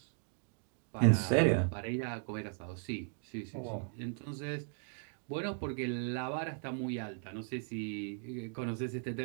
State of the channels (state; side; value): silent; left; 53 dB below the other